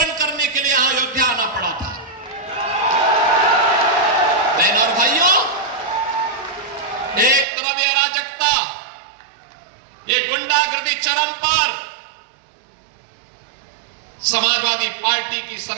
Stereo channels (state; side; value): drops out; left; at 7.5 s